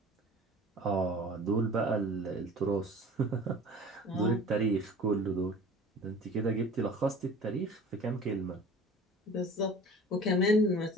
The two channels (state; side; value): normal; both; correlation 0.43